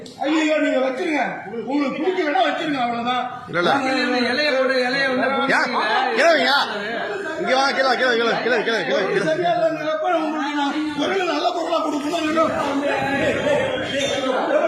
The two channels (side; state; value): both; identical; correlation 1.00